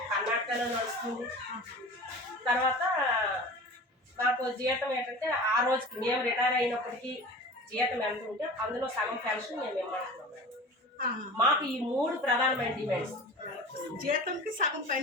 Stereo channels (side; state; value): both; normal; correlation 0.37